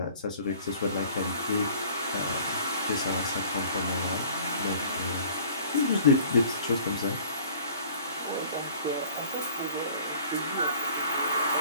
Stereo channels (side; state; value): both; inverted; correlation -0.49